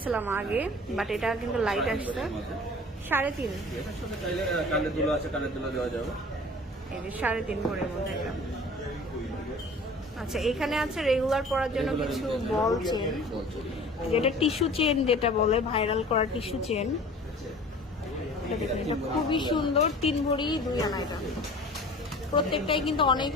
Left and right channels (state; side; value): normal; both; correlation 0.44